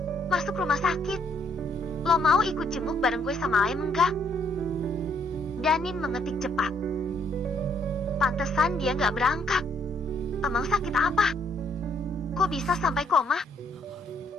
Masuk rumah sakit. Lo mau ikut jenguk bareng gue sama Layan enggak? Danin mengetik cepat. Pantesan dia nggak berangkat. Emang sakit apa? Kok bisa sampai koma?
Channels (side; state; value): both; normal; correlation 0.69